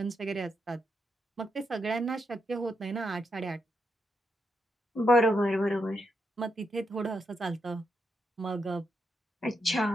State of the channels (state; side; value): normal; both; correlation 0.83